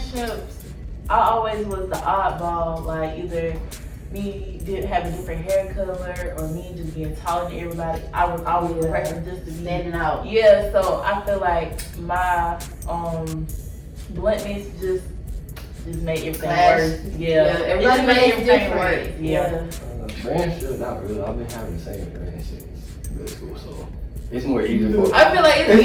I always was the oddball. Like, either me did have a different hair color or me just being taller than everybody. I was always the person just to be standing out. Yeah, so I feel like my bluntness just just made everything Clash. worse. Yeah, everybody it just makes everything different. worse. Yeah. Friendship, not really. I've been having the same friend since middle school, so it's more easy for. I feel like it's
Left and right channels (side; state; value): both; identical; correlation 1.00